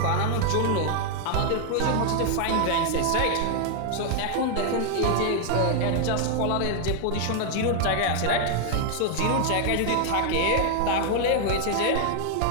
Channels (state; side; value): different; both; correlation 0.00